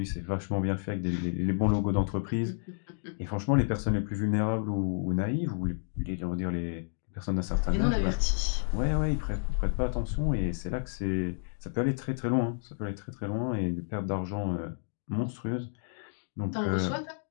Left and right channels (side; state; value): right; silent; digital silence